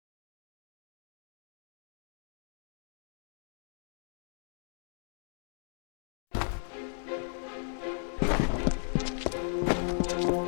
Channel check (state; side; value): silent; right; digital silence